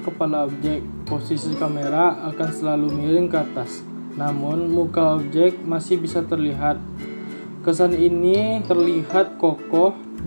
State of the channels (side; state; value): both; inverted; correlation -1.00